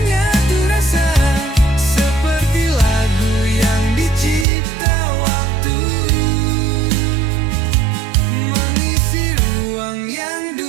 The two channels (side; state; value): left; drops out; at 4.5 s